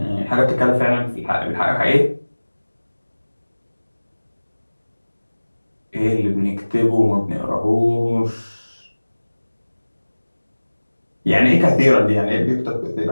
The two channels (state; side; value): inverted; both; correlation -1.00